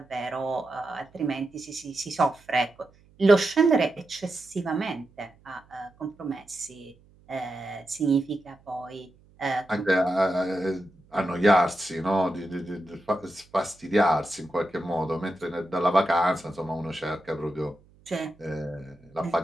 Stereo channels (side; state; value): right; noise; hum, 29 dB below the sound